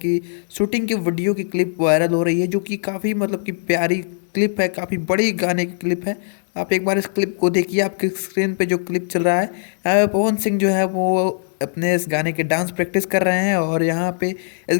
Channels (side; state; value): right; silent; digital silence